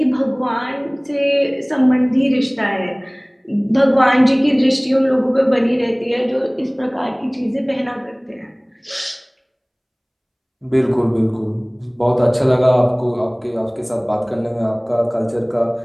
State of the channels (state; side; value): identical; both; correlation 1.00